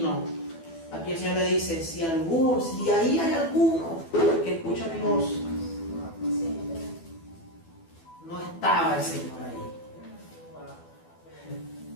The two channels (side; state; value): right; late; 12 ms